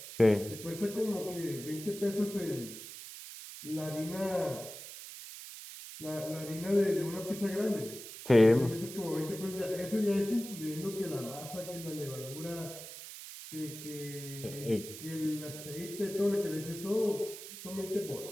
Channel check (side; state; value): right; noise; hiss, 12 dB below the sound